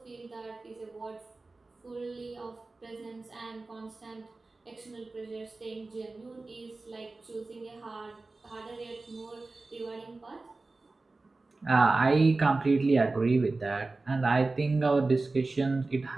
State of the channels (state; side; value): quieter; left; 3.4 dB